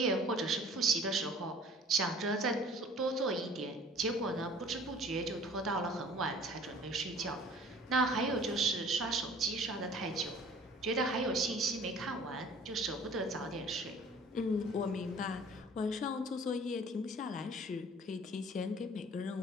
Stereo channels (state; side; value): normal; both; correlation 0.49